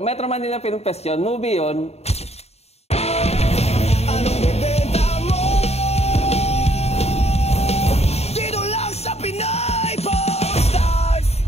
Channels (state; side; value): late; right; 0.30 ms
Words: Manila Film Fest yun. Movie yun. Anong bibenta mo? Dito lang sa Pinay Stars!